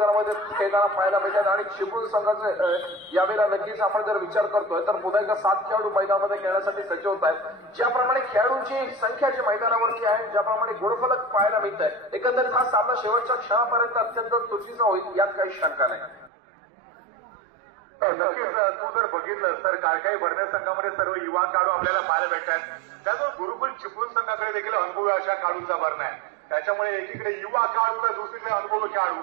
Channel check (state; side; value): drops out; left; at 16.3 s